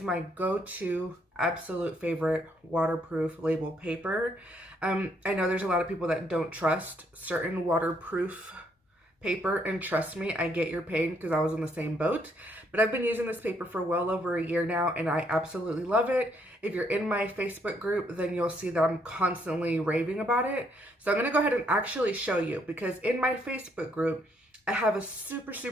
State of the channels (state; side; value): normal; both; correlation 0.71